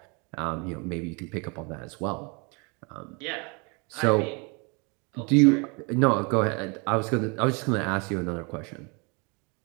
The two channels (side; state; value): left; quieter; 31.7 dB